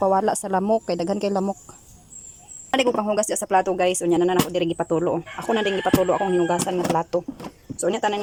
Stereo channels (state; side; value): identical; both; correlation 1.00